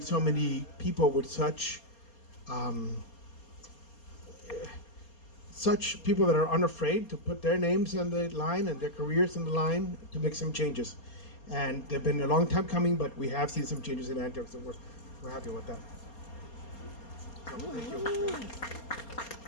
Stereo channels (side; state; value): right; late; 4.3 ms